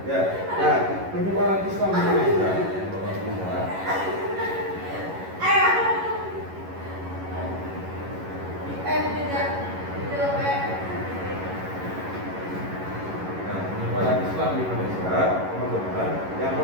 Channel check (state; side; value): late; left; 11 ms